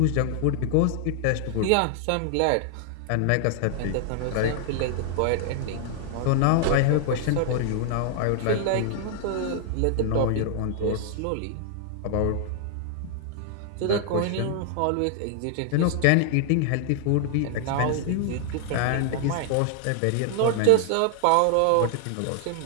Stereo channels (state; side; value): different; both; correlation 0.00